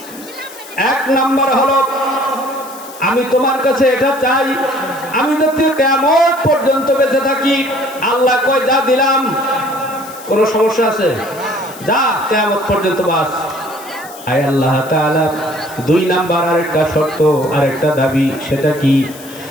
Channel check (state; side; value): noise; left; hiss, 18 dB below the sound